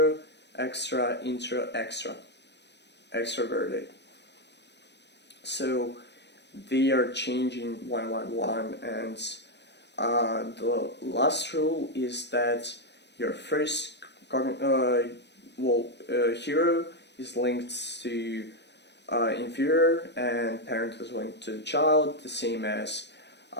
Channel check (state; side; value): late; right; 0.50 ms